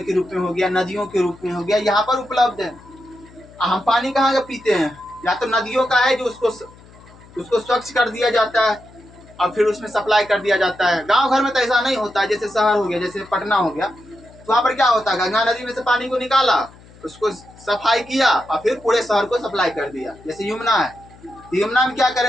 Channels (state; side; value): noise; left; hum, 23 dB below the sound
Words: के रूप में हो गया, नदियों के रूप में हो गया, यहाँ पर उपलब्ध है। हम पानी कहाँ का पीते हैं, या तो नदियों का है जो उसको स्वच्छ कर दिया जाता है और फिर उसमें सप्लाई कर दिया जाता है। गांव घर में तो ऐसा नहीं होता है। जैसे शहर हो गया, जैसे पटना हो गया, तो वहाँ पर क्या होता है, गंगा नदी में से पानी को निकाला, उसको सफाई किया और फिर पूरे शहर को सप्लाई कर दिया। जैसे यमुना है, यमुना में क्या